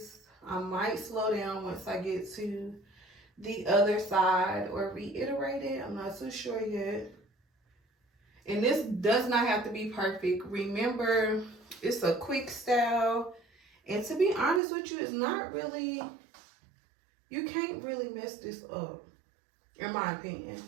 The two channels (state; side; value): drops out; left; at 14.6 s